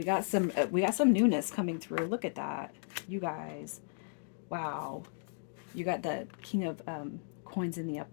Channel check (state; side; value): silent; right; digital silence